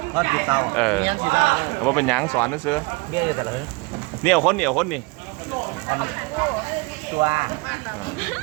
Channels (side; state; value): left; quieter; 27.9 dB